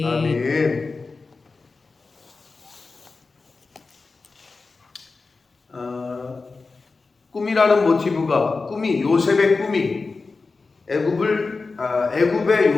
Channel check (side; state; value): right; quieter; 4.1 dB